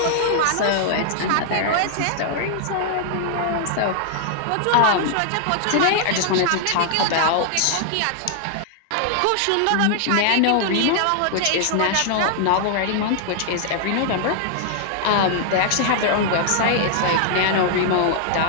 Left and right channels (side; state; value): both; different; correlation -0.01